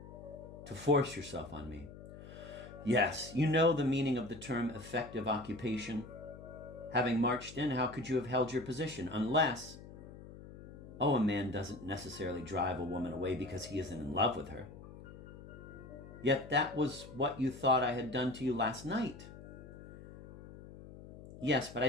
to force yourself on me." "Yes, you know the meaning of the term effective occupation. Having marched in, how could you have held your position? Unless... Oh, a man doesn't necessarily drive a woman away because he isn't in love with her. Yet that was what you thought I had done to you last night." Yes, but I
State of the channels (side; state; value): left; noise; hum, 15 dB below the sound